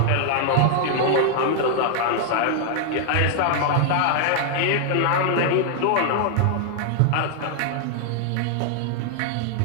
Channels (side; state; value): both; different; correlation 0.00